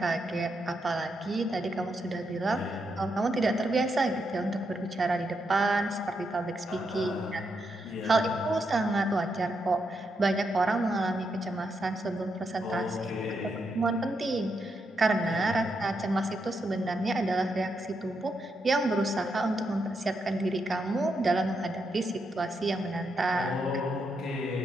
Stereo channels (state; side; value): normal; both; correlation 0.82